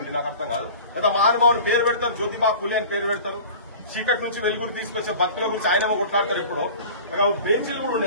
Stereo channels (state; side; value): inverted; both; correlation -0.40